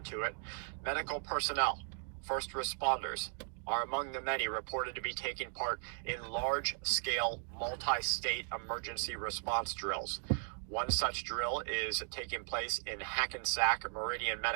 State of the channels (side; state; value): left; silent; 53 dB below the other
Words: to it. Medical personnel, first responders, are among the many reported to be taking part in large-scale, multi-state emergency response drills. One such drill is taking place in Hackensack Meridian